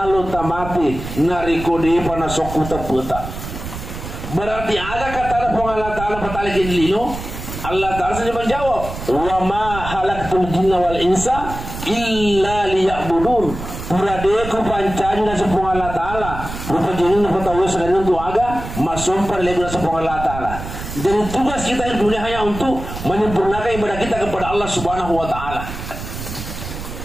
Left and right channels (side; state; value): right; noise; rumble, 9 dB below the sound